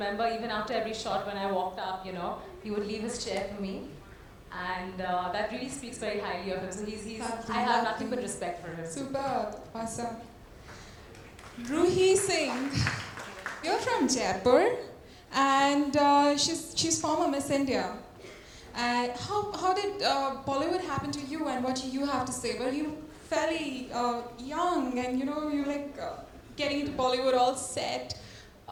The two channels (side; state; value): both; identical; correlation 1.00